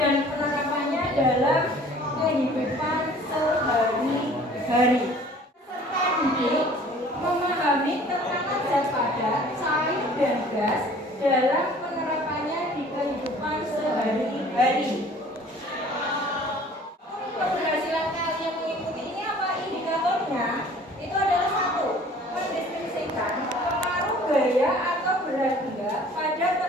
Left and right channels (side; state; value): both; normal; correlation 0.50